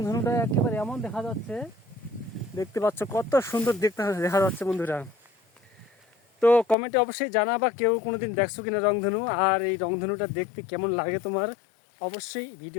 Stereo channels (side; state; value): right; drops out; at 6.8 s